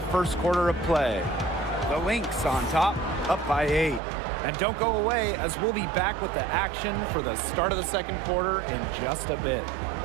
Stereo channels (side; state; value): left; drops out; at 4.0 s